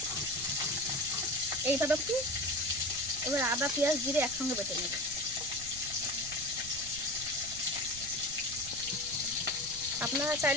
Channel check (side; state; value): right; noise; rumble, 15 dB below the sound